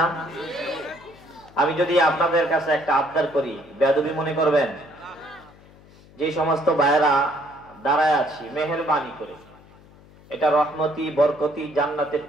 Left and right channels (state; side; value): noise; left; hum, 25 dB below the sound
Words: আমি যদি আপনাদের কাছে একটা আবদার করি, বেয়াদবি মনে করবেন? যে সমস্ত ভাইরা দাঁড়ায় আছি, মেহেরবানি করে, এটা রহমতি বরকতি জান্নাতের